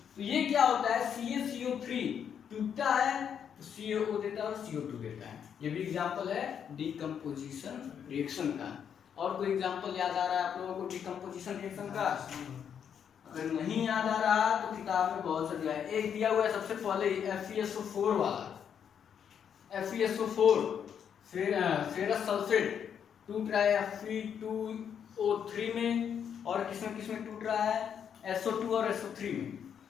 तो ये क्या होता है? CaCO3 टूटता है तो CaO देता है और CO2 देता है। ये भी एग्जाम्पल है डीकम्पोजिशन रिएक्शन का। और कोई एग्जाम्पल याद आ रहा है आप लोगों को डीकम्पोजिशन रिएक्शन का? अगर नहीं याद आ रहा तो किताब में बहुत सा दिया है। एक दिया हुआ है सबसे पहले FeSO4 वाला, FeSO4, फिर फेरस सल्फेट टूट रहा है Fe2O3 में, और किसमें टूट रहा है? SO2 और SO3 में।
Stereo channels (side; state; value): right; quieter; 8.1 dB